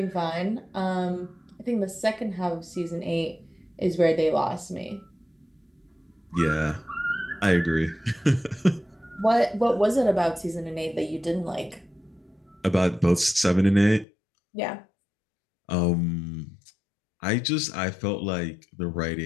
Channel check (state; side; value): drops out; right; at 14.1 s